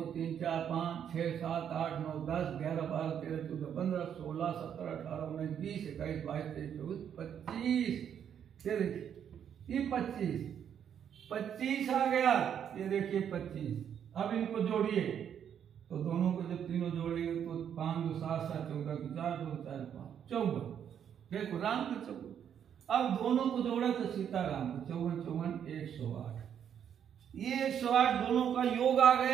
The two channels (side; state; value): left; quieter; 8.7 dB